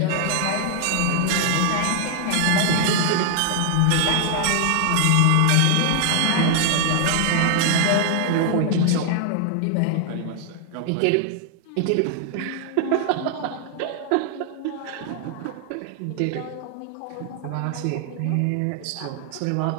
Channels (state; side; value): different; both; correlation 0.00